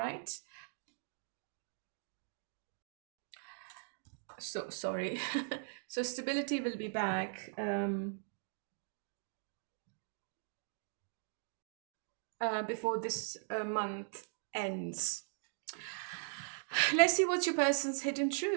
So sorry. So stability will be back before this month ends. Let's see what's your person's hidden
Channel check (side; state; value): left; silent; digital silence